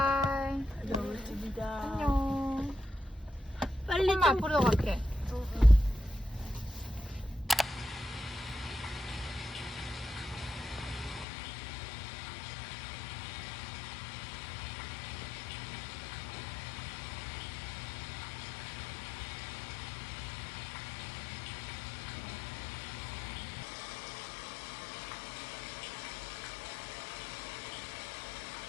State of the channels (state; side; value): drops out; right; at 11.2 s